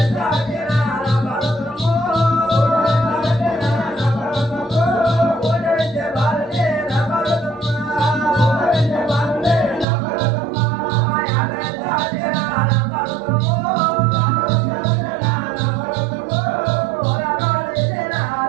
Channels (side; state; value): left; drops out; at 9.9 s